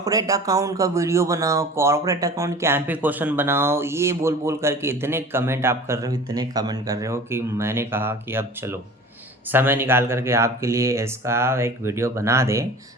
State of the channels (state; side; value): normal; both; correlation 0.41